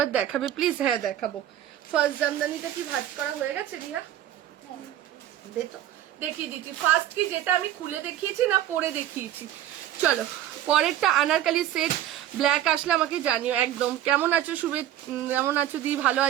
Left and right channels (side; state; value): left; quieter; 12.2 dB